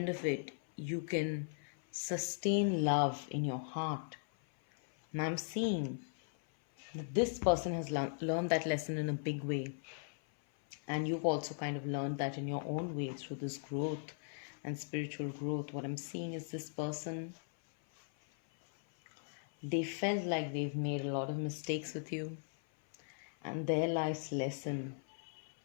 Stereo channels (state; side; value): silent; right; 52 dB below the other